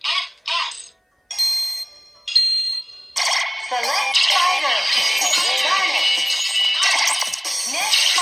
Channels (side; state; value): both; identical; correlation 1.00